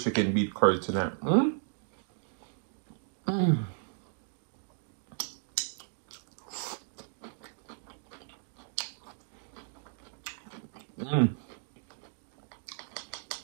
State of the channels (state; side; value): silent; left; digital silence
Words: beat curry tonight.